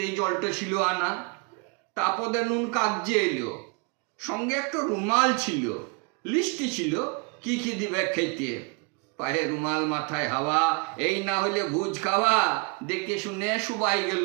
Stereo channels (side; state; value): left; quieter; 31.9 dB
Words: জলটা ছিল আনা। তারপরে নুন কাগজে এলো, সঙ্গে একটা রুমাল ছিল, লিস্টি ছিল কি কি দিবে খেতে। পায়ে রুমাল মাথায় হাওয়া, এই না হলে ভুজ খাওয়া, দেখে শুনে সবাই